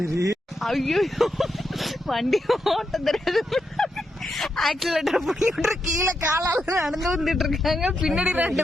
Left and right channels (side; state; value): both; normal; correlation 0.84